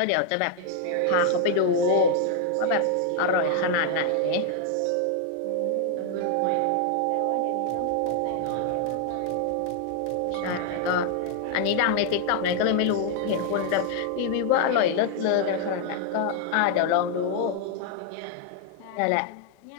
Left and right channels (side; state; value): both; different; correlation 0.00